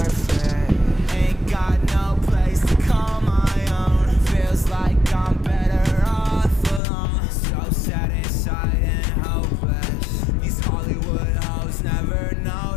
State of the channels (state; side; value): drops out; right; at 6.8 s